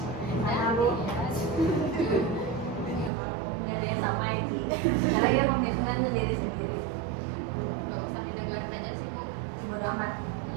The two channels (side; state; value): left; drops out; at 3.1 s